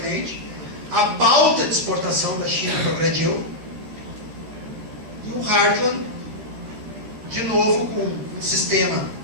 a pauta de exportação da China progrediu, e o Hartland, de novo com um sistema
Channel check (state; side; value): late; left; 13 ms